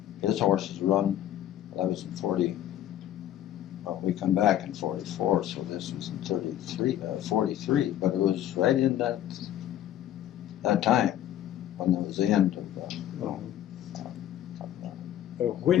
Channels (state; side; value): quieter; right; 11.9 dB